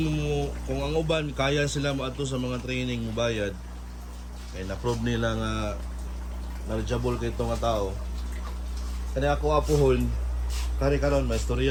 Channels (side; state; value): both; identical; correlation 1.00